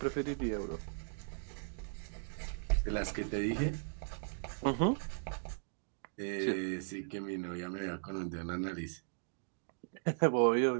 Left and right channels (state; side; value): silent; left; digital silence